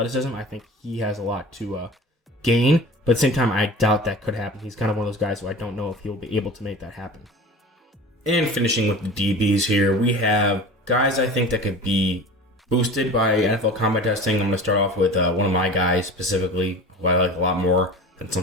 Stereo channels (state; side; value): normal; both; correlation 0.37